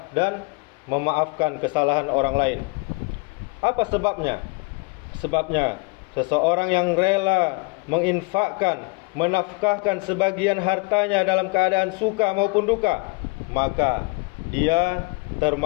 dan memaafkan kesalahan orang lain. Apa sebabnya? Sebabnya seseorang yang rela menginfakkan, menafkahkan sebagian hartanya dalam keadaan suka maupun duka, maka dia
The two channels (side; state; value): right; quieter; 30.3 dB